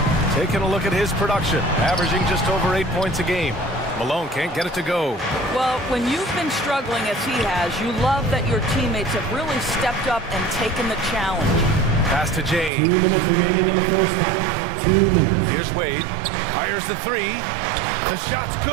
Taking a look at his production, averaging just over 8 points a game. Malone can't get it to go. Well, when you've been struggling as he has, you love that your teammates have really stepped up and taken the challenge. Pass to James. 2 minutes remaining in the first half. 2 minutes. Here's Wade. Fires the 3. The shot's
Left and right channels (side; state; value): left; drops out; at 12.7 s